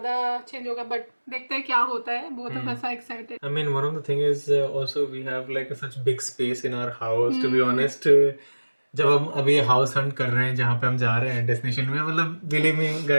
change होगा. But देखते हैं क्या होता है. Both of us are excited. I mean, one of the thing is also we have like such big space in our house. To be honest, जब हम अभी हाउस हंट कर रहे हैं जहाँ पे हम जा रहे हैं डेस्टिनेशन में, मतलब believe me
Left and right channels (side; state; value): both; inverted; correlation -1.00